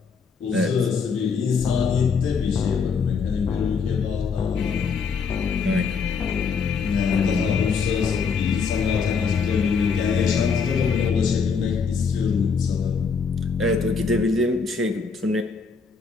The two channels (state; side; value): quieter; right; 5.4 dB